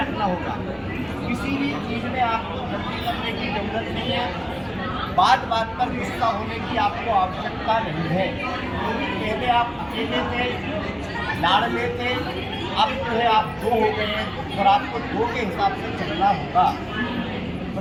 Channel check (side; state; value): both; identical; correlation 1.00